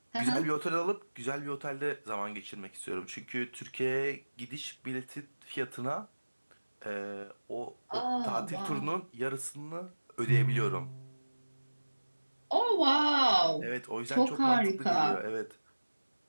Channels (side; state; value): both; inverted; correlation -1.00